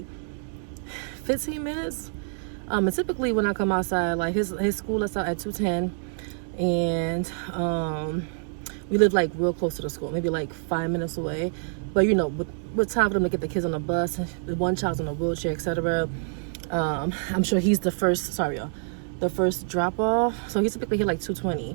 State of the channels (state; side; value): silent; left; 60 dB below the other